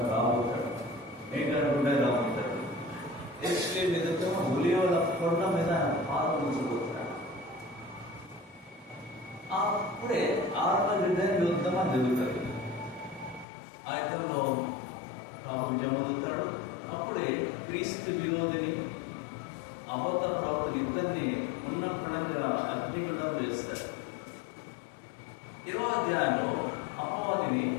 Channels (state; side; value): drops out; right; at 13.5 s